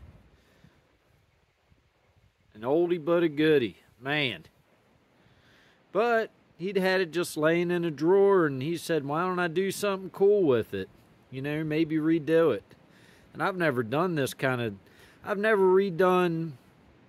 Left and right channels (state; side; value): identical; both; correlation 1.00